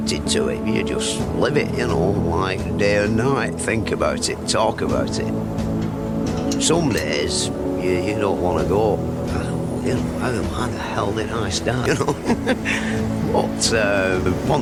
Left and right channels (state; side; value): identical; both; correlation 1.00